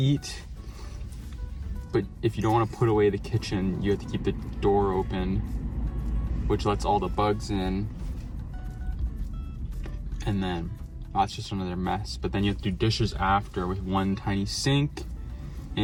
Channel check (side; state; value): both; identical; correlation 1.00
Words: But if you don't want to put away the kitchen, you have to keep the door open, which lets all the bugs in. And then that's just another mess. But then you have to do dishes after with one tiny sink.